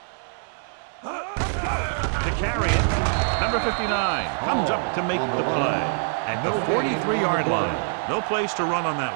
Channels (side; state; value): left; silent; 62 dB below the other